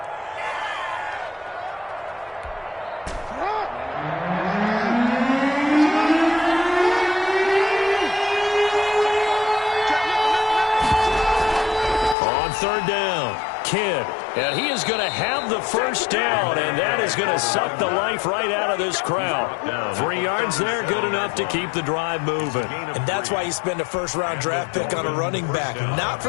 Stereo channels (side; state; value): right; drops out; at 12.2 s